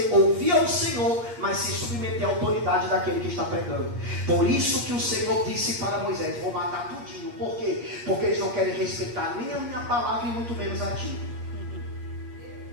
ouvir ao Senhor, mas se submeter à autoridade daquele que está pregando. Por isso que o Senhor disse para Moisés: vou matar tudinho. Por quê? Porque eles não querem respeitar nem a minha palavra e muito menos a ti.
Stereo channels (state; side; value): late; left; 8.5 ms